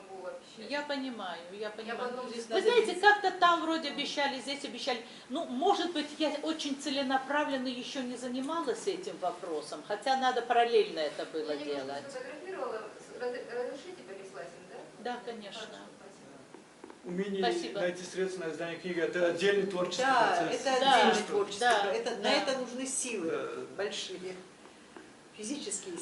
обещать. Я понимаю, я понимаю. потом Здесь Вы надо знаете, видеть. как-то там вроде обещали, здесь обещали. Ну, может быть, я очень целенаправленно еще не занималась этим вопросом, хотя надо параллельно это было Я немножко делать. сфотографировала. Разрешите переслать им, да? Да, конечно. Хорошо, спасибо. Умение Спасибо. найти средства на издание книги – это отдельный творческий Да, процесс. это Да, отдельный творческий да, процесс. На да. это нужны силы Да. большие, физические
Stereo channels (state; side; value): identical; both; correlation 1.00